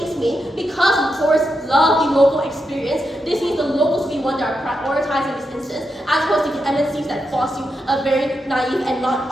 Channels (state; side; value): normal; both; correlation 0.85